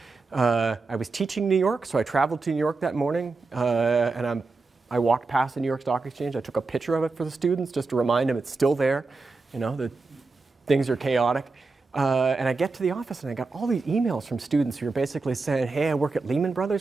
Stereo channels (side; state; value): left; quieter; 3.9 dB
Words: I was teaching in New York, so I traveled to New York that morning, and I walked past the New York Stock Exchange. I took a picture of it for the students just to remind them it's still there, that things are chaotic. And I get to the office, and I got all these emails from students who are basically saying, hey, I work at Lehman